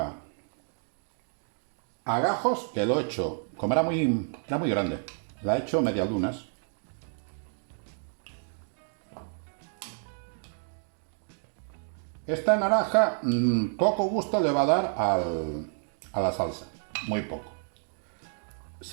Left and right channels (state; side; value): silent; left; 58 dB below the other